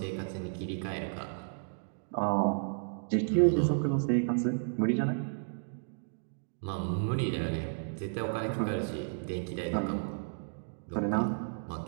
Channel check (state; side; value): silent; left; digital silence